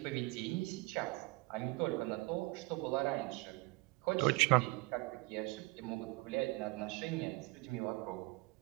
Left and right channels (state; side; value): quieter; left; 23.5 dB